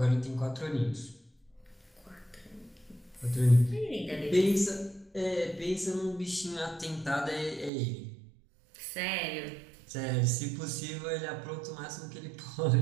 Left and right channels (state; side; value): drops out; left; at 7.7 s